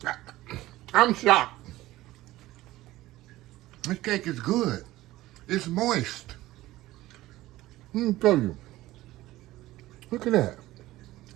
I'm shocked. This cake is good. It's moist. Let me tell you. Look at that.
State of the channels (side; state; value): left; quieter; 16.7 dB